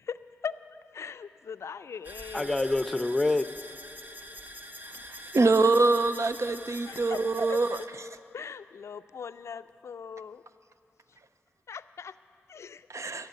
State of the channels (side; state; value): both; normal; correlation 0.85